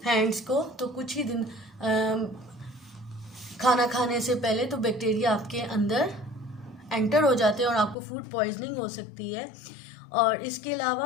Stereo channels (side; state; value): right; drops out; at 8.0 s